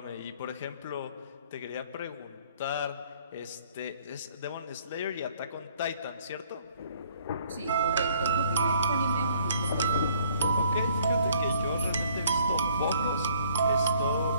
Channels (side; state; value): both; inverted; correlation -0.60